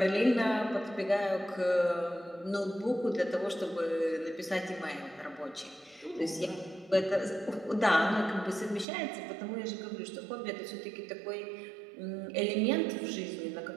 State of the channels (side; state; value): left; drops out; at 8.8 s